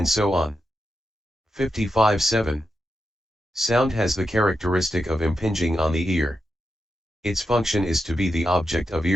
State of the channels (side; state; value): both; normal; correlation 0.87